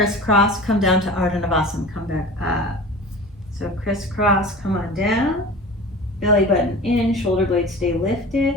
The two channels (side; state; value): both; normal; correlation 0.37